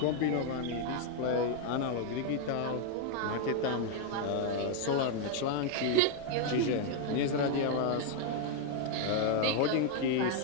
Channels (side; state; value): both; different; correlation 0.00